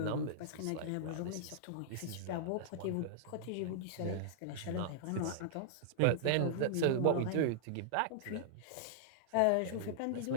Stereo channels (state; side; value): different; both; correlation -0.01